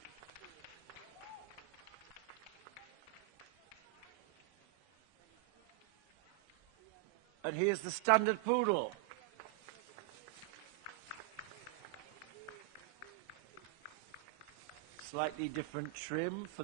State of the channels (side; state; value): left; quieter; 19.4 dB